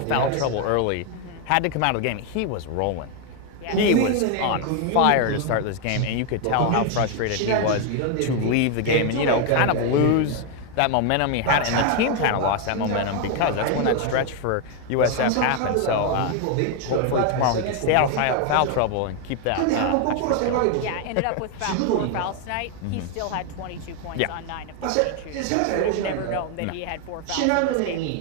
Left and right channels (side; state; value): both; different; correlation 0.01